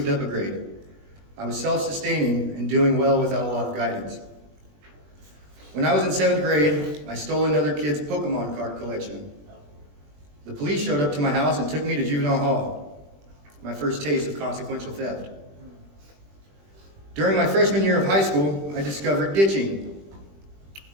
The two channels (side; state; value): left; late; 20 ms